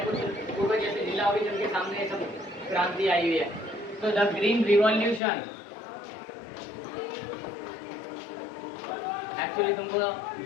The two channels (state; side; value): drops out; right; at 5.2 s